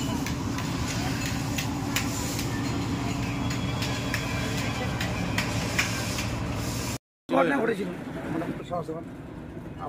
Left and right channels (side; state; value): both; identical; correlation 1.00